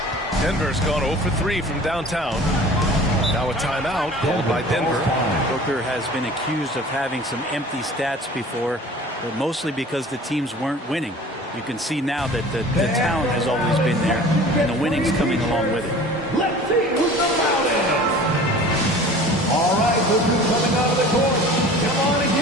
Denver's gone 0 for 3 from downtown. Now a timeout called by Denver. Booker has been accused of having some empty stats before, but mostly because the teams weren't winning. You can see now that the talent has always been there, and the winning's coming along with it. Let's see who's the loudest. All right, look who's coming out of the court. Come on and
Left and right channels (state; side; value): normal; both; correlation 0.43